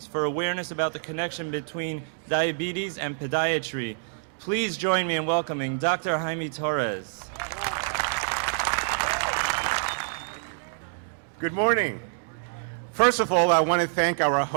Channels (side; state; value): left; silent; digital silence